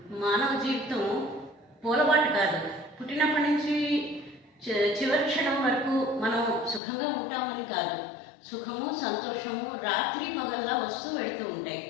మానవ జీవితం పూలబాటు కాదు. పుట్టినప్పటి నుంచి చివరి క్షణం వరకు మనం సుఖంగా ఉంటామని కాదు. సుఖము, సంతోషము రాత్రి పగల్లా వస్తూ వెళుతూ ఉంటాయి.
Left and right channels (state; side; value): drops out; right; at 6.8 s